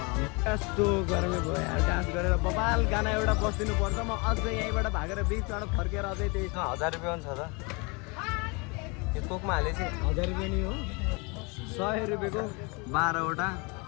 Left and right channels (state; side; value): quieter; right; 29.7 dB